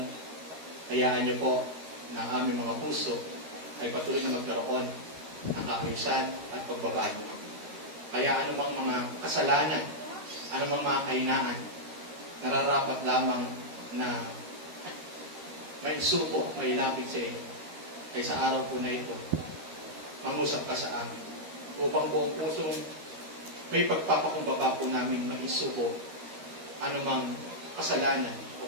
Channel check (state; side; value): late; left; 13 ms